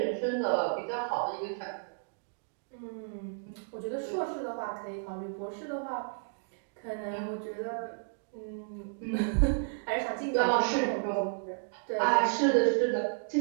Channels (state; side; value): silent; left; digital silence